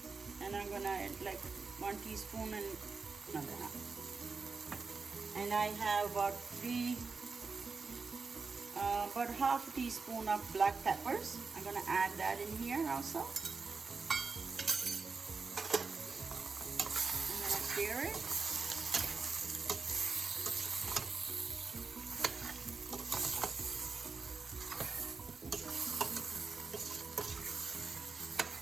And I'm gonna add like 1 teaspoon and another half. And I have about half a teaspoon of black peppers. I'm gonna add that in here also. I'm gonna stir it.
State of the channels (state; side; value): quieter; left; 4.5 dB